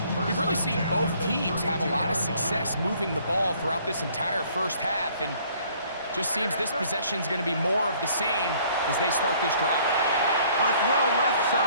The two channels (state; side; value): inverted; both; correlation -0.59